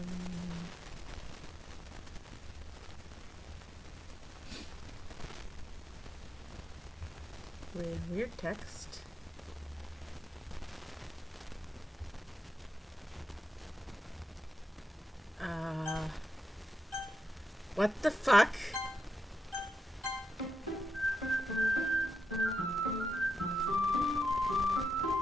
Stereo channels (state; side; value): normal; both; correlation 0.85